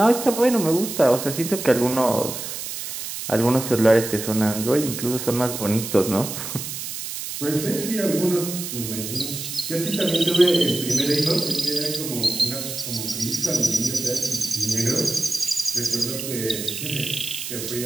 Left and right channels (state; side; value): noise; right; hiss, 7 dB below the sound